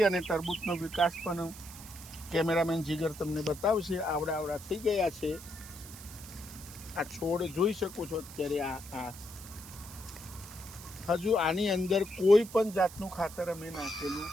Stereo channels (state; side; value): noise; right; hiss, 15 dB below the sound